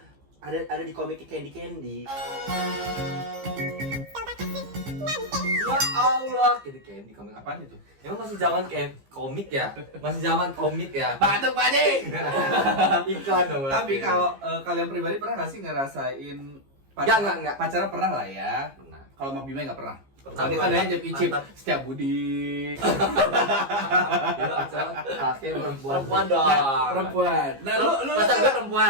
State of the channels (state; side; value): late; left; 15 ms